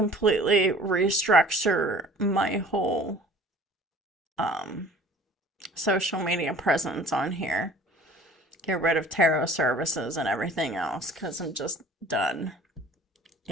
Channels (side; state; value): both; normal; correlation 0.48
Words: restructure my whole social media presence on here. Get rid of tarot services and everything else, because I'm just done.